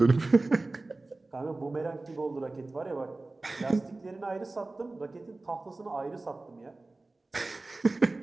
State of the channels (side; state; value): left; quieter; 3.2 dB